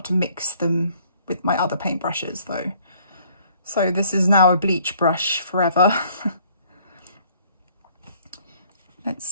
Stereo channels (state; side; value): inverted; both; correlation -0.60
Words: to mix them with my other paintbrushes though. So this is now a bleach brush forever. Let's